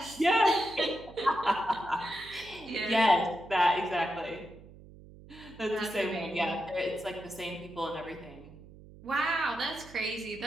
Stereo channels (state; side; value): noise; right; hum, 19 dB below the sound